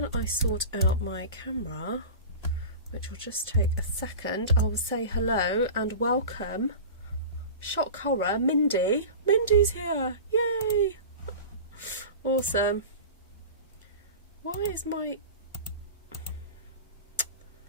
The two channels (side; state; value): both; inverted; correlation -0.33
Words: I sort out my camera, which will just take a second, I will say hello and welcome. Shock horror, Mindy. Mindy's here. Yay! Awesome. Why is I'm